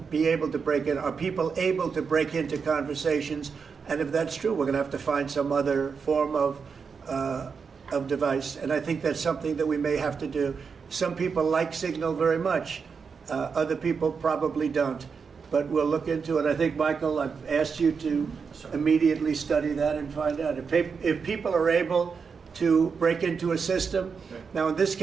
able to break in? Are people able to break into conversations? And if that's true, we're going to have to find some other form of device. And I think that's something that we may have to do. Some people like Signal very much. Other people probably don't. But we'll look into it. I think, Michael, I've asked you to immediately study that and find out. If people are able to break into a system, now in this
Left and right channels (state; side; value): quieter; left; 5.7 dB